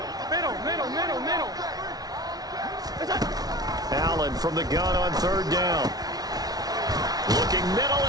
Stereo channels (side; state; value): left; late; 0.19 ms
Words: Middle. Allen from the gun on 3rd down. Looking middle,